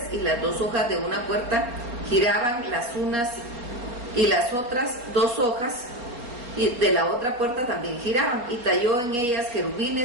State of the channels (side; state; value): left; late; 4.2 ms